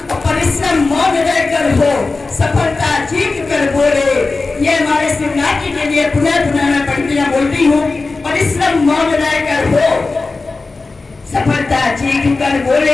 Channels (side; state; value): right; quieter; 3.7 dB